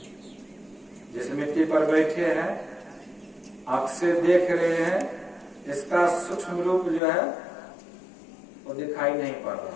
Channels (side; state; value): right; drops out; at 7.0 s